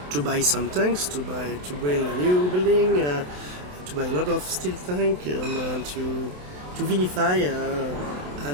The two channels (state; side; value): late; left; 27 ms